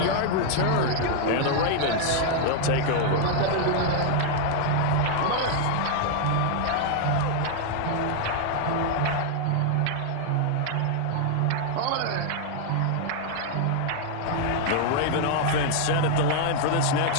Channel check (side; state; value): both; different; correlation 0.00